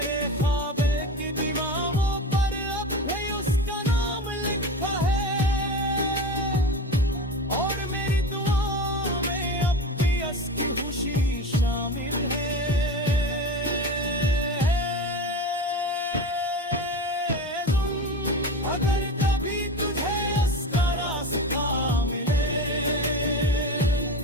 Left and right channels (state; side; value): normal; both; correlation 0.27